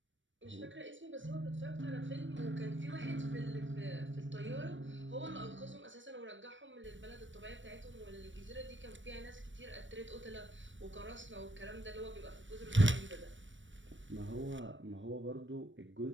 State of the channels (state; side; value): late; left; 0.55 ms